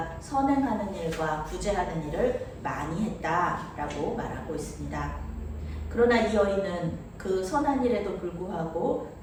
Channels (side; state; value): both; identical; correlation 1.00